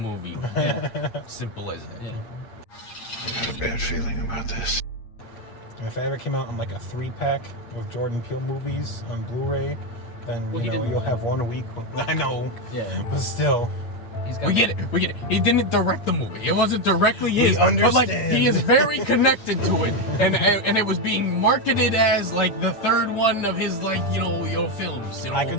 Yeah. Simple as that. Yeah. I got a bad feeling about this. If it ever came out in like a 3-pack of Jordan Peele movies on Blu-ray, then you'll have one a week. I know. Yeah. But still. We get it. He didn't direct the movie. It wasn't directly his. understand. But he is very connected to it, and it was being marketed as like the 3rd one of his your films. I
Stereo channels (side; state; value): right; late; 8.7 ms